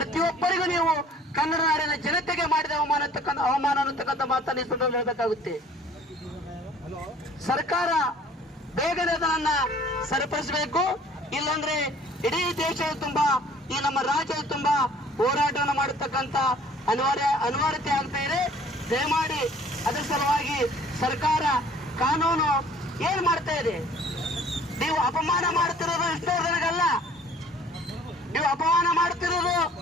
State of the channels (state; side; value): normal; both; correlation 0.53